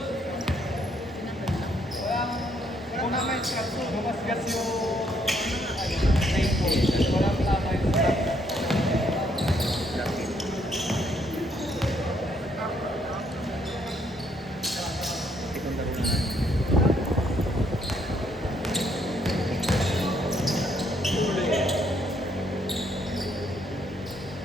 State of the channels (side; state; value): both; normal; correlation 0.70